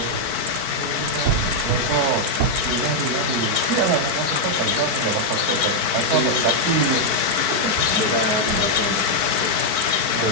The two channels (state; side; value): late; left; 4.5 ms